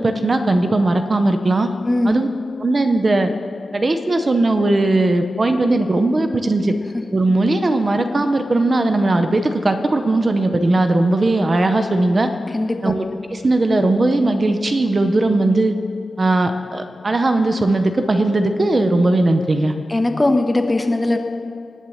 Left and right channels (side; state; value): both; normal; correlation 0.94